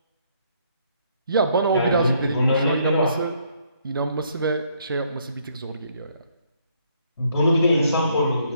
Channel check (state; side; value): inverted; both; correlation -0.69